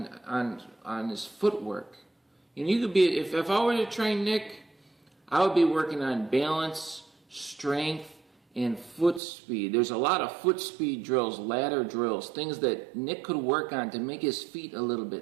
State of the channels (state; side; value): drops out; left; at 9.2 s